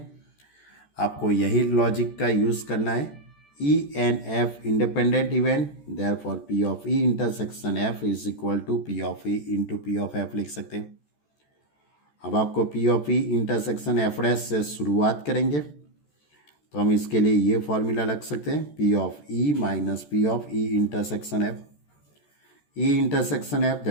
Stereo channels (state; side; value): late; right; 14 ms